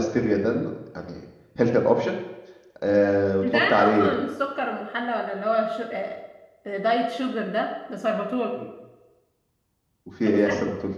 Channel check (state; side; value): identical; both; correlation 1.00